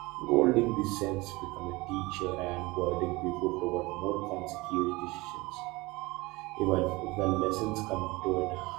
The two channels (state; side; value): quieter; left; 22.5 dB